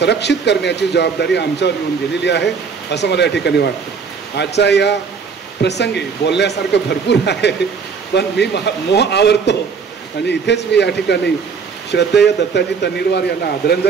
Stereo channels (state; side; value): quieter; left; 5.7 dB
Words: करण्याची जबाबदारी आमच्यावर येऊन गेलेली आहे असं मला या ठिकाणी वाटतं. आजच्या या प्रसंगी बोलण्यासारखं भरपूर आहे, पण मी मोह आवरतो आणि इथेच मी या ठिकाणी श्रद्धेय दत्ताजी तन्नीरवार यांना